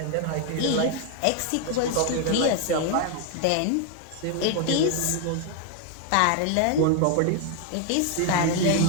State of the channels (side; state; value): both; different; correlation 0.01